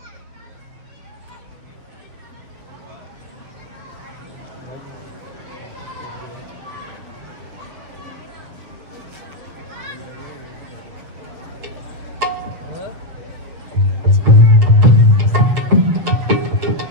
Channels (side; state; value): left; late; 7.2 ms